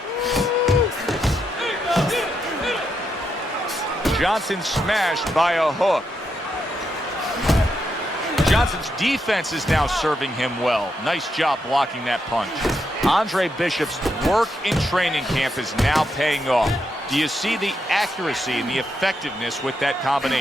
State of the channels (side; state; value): both; normal; correlation 0.81